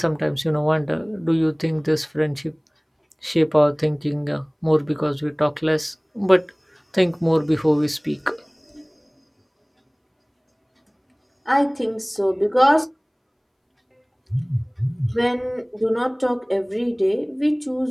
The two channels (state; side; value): identical; both; correlation 1.00